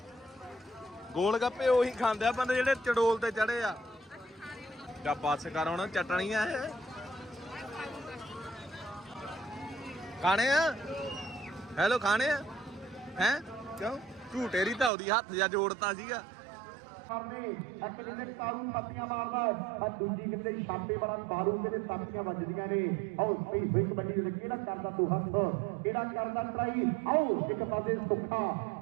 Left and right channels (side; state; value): left; drops out; at 14.9 s